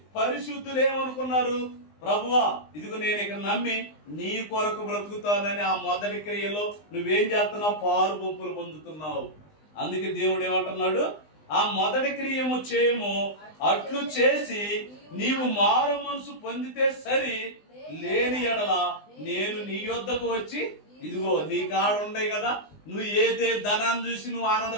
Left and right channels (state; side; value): late; right; 20 ms